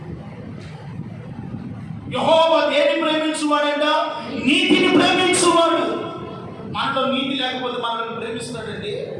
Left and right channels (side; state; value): both; identical; correlation 1.00